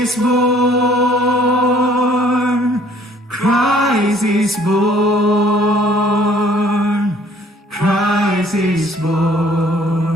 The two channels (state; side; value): normal; both; correlation 0.58